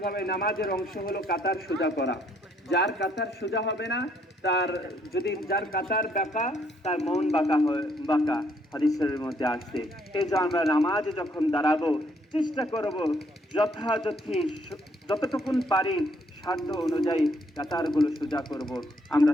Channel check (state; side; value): normal; both; correlation 0.69